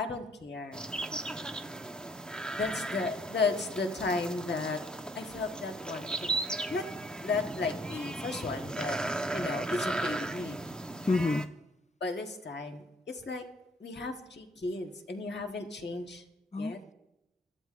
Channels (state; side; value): normal; both; correlation 0.63